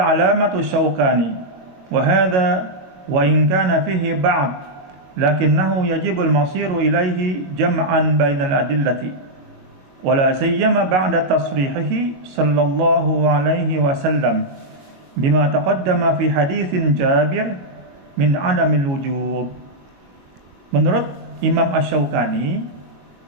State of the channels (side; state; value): left; late; 22 ms